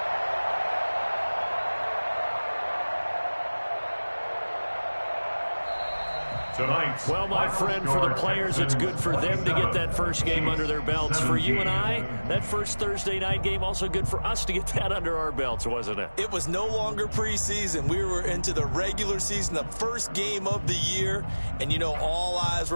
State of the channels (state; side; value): inverted; both; correlation -1.00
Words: Tonight's well, my friend, for the players, it's good for them to get that first game under their belts. For you and I, that first Thursday night game, also good for us to get that under our belts, wasn't it? It was no longer preseason. We were into the regular season, the first game of the year. And, you know, all eyes